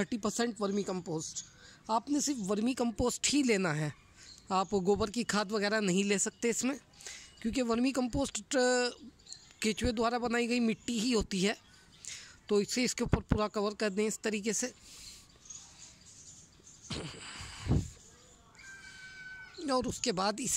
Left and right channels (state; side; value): identical; both; correlation 1.00